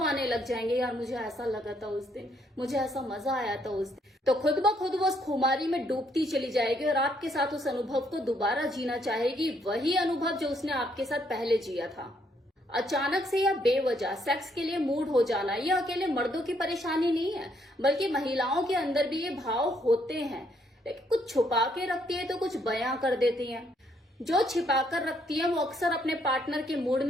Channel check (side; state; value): both; normal; correlation 0.71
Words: आने लग जाएंगे, यार मुझे ऐसा लगा था उस दिन, मुझे ऐसा मजा आया था उस दिन। तो खुद ब खुद वो उस खुमारी में डूबती चली जाएगी और आपके साथ उस अनुभव को दोबारा जीना चाहेगी, वही अनुभव जो उसने आपके साथ पहले जिया था। अचानक से या बेवजह सेक्स के लिए मूड हो जाना ये अकेले मर्दों की परेशानी नहीं है, बल्कि महिलाओं के अंदर भी ये भाव होते हैं, लेकिन कुछ छुपा के रखती है तो कुछ बयां कर देती हैं। जो छिपा कर रखती है वो अक्सर अपने पार्टनर के मूड